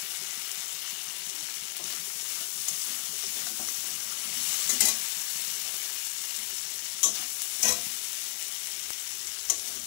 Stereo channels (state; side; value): silent; right; digital silence